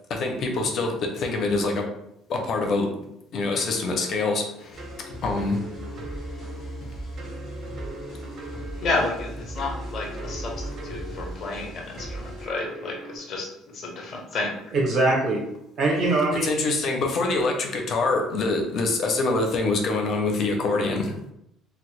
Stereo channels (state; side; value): normal; both; correlation 0.62